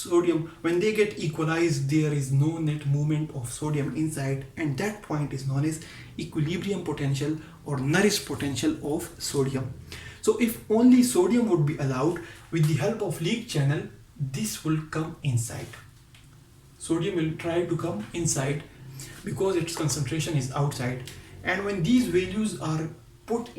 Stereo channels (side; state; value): both; identical; correlation 1.00